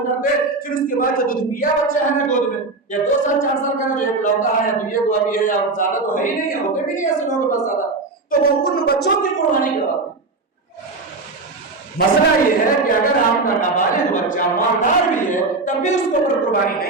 کرتے, پھر اس کے بعد جو دودھ پیا بچہ ہے نا گود میں, یا 2 سال 4 سال کا جو ایک لوٹا ہے یا دنیا کو ابھی ہے یا زیادہ تو ہے ہی نہیں, ہوتے بھی نہیں ایسے لوگوں کے پاس زیادہ, تو وہ ان بچوں کی قربانی کرواتے ہیں. مسئلہ یہ ہے کہ اگر آپ کا نابالغ بچہ مالدار بھی ہے تب بھی اس کے اوپر قربانی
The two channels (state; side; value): quieter; left; 3.6 dB